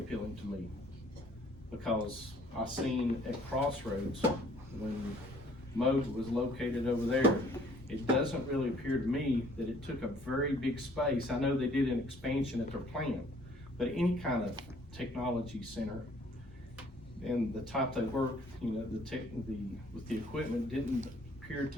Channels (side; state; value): both; normal; correlation 0.58